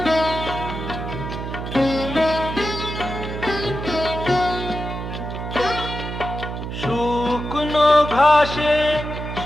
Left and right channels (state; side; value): noise; right; hum, 6 dB below the sound